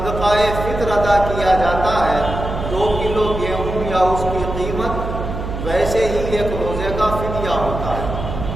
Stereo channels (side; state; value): right; noise; hum, 6 dB below the sound